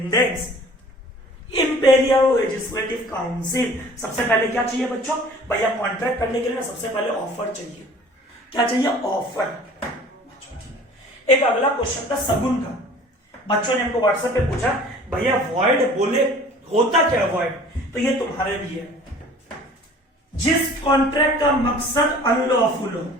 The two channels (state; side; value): normal; both; correlation 0.48